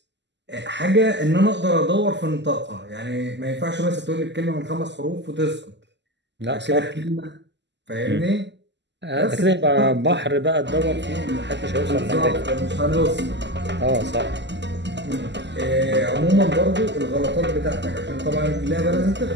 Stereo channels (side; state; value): left; late; 0.51 ms